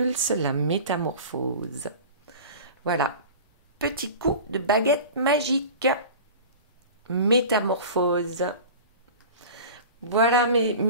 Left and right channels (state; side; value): inverted; both; correlation -0.37